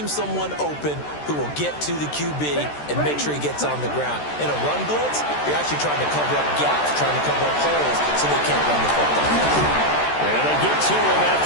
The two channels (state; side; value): late; right; 13 ms